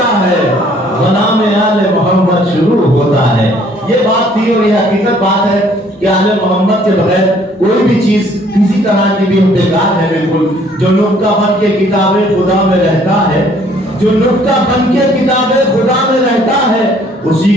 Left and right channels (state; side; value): normal; both; correlation 0.60